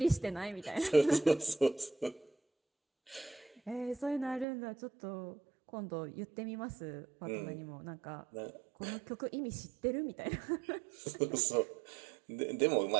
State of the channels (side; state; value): left; drops out; at 4.5 s